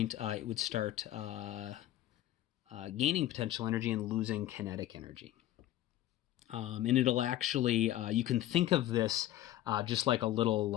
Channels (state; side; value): quieter; right; 13.8 dB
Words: it would start gaining potential energy and losing kinetic energy. And it'll actually, you can think of this just like a little